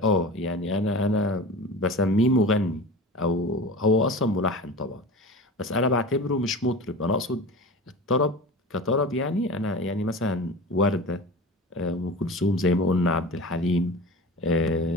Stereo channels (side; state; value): both; normal; correlation 0.33